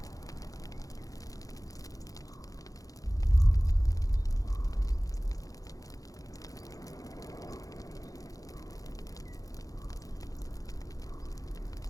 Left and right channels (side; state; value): right; late; 0.17 ms